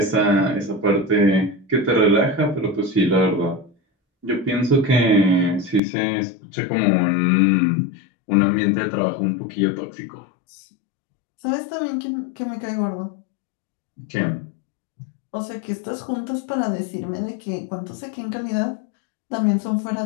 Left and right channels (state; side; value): drops out; right; at 5.8 s